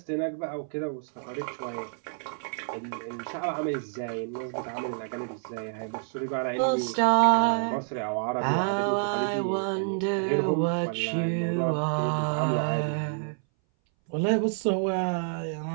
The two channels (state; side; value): silent; left; 59 dB below the other